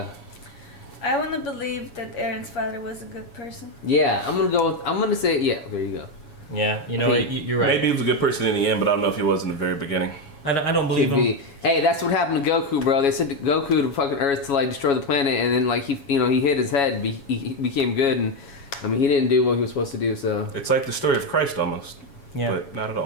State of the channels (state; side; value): late; right; 7.2 ms